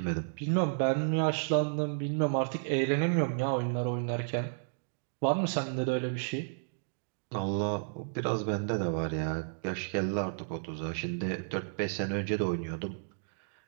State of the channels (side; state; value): left; silent; digital silence